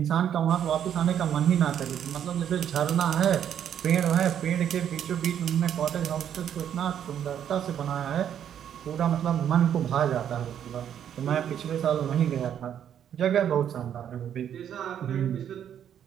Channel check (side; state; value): left; quieter; 9.4 dB